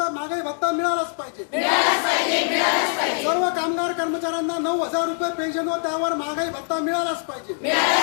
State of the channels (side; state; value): right; silent; 58 dB below the other